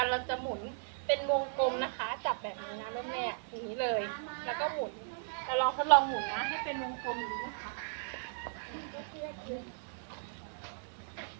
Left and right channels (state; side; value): silent; left; digital silence